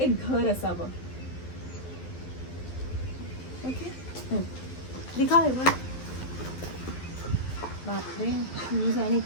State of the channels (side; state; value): right; late; 12 ms